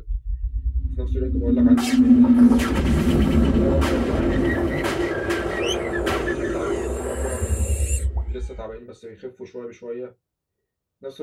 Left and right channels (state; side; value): identical; both; correlation 1.00